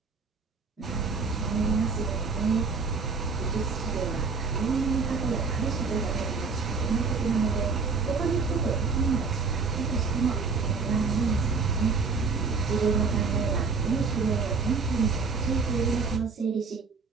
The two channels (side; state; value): left; quieter; 4.8 dB